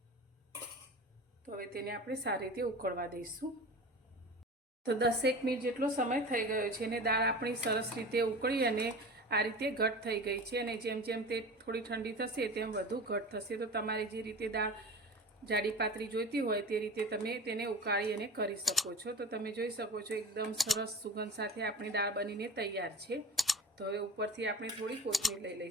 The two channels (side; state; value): both; normal; correlation 0.34